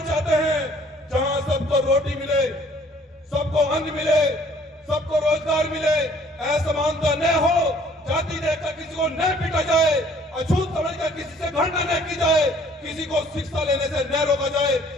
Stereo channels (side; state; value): both; normal; correlation 0.57